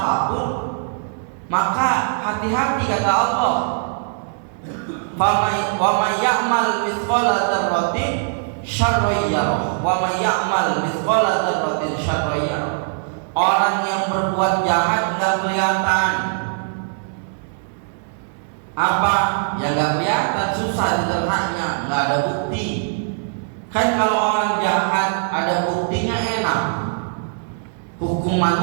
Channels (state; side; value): silent; left; digital silence